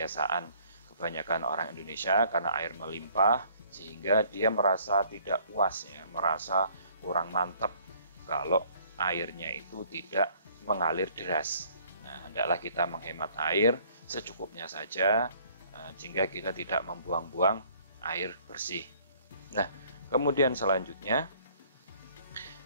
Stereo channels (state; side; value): inverted; both; correlation -0.58